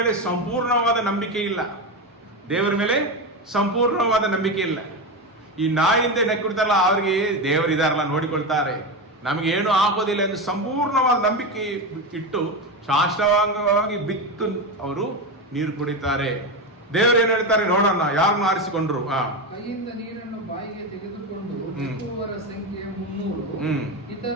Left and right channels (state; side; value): normal; both; correlation 0.16